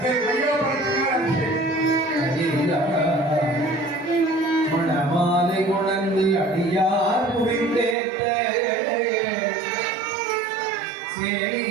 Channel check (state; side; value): drops out; left; at 8.0 s